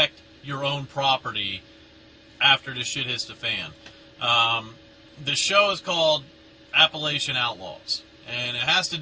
your own property after the shit hits the fan. The show is called Appalachian Outlaws, and it has to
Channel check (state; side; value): identical; both; correlation 1.00